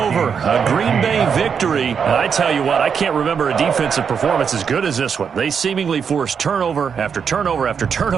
A Green Bay victory. And I tell you what, I can't remember a defensive performance as good as this one. They seemingly forced turnover after turnover after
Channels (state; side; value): quieter; left; 6.7 dB